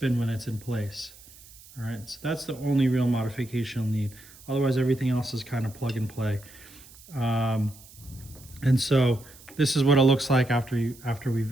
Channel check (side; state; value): right; noise; hiss, 21 dB below the sound